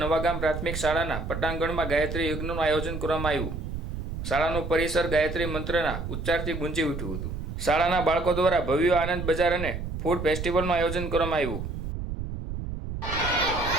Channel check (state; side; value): noise; right; rumble, 6 dB below the sound